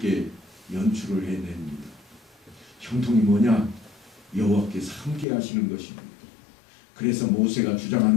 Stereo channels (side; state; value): right; drops out; at 5.2 s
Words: 연출을 해냅니다. 형통이 뭐냐? 여호와께서 함께 하시는 것입니다. 그래서 모세가